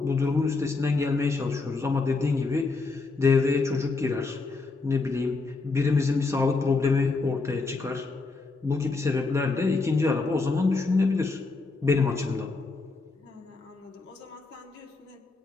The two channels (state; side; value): quieter; right; 3.9 dB